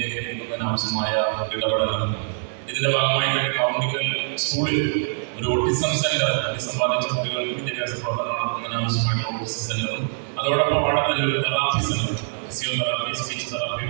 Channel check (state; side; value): silent; left; 63 dB below the other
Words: എത്തിക്കുന്നതിന് ആവശ്യമായ ഇടപെടലാണ്. ഇതിന്റെ ഭാഗമായി തന്നെ കൗണ്ടിക്കൽ സ്കൂളിൽ ഒരു ഓട്ടിസം സെന്റർ, സമ്പാദിച്ച കുട്ടികൾക്ക് വിദ്യാഭ്യാസ പ്രവർത്തനം നടത്തുന്നതിന് ആവശ്യമായിട്ടുള്ള ഓട്ടിസം സെന്ററും അതോടൊപ്പം അവിടെ തന്നെ ഒരു therapy centre, physiotherapy, speech therapy